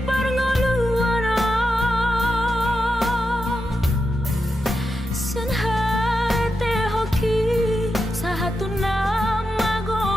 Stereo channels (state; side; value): normal; both; correlation 0.88